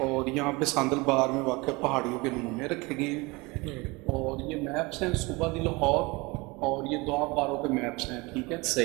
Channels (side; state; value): left; quieter; 24.9 dB